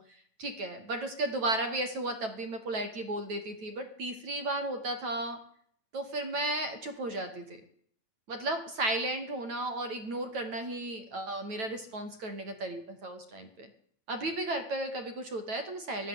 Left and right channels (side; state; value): left; late; 9.1 ms